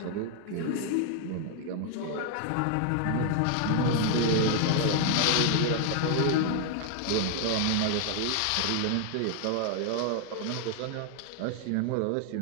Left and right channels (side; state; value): both; different; correlation 0.00